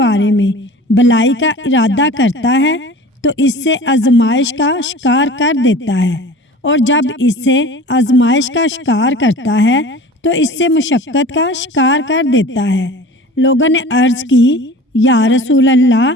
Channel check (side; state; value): both; normal; correlation 0.41